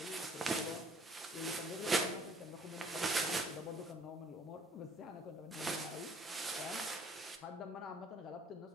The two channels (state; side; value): normal; both; correlation 0.58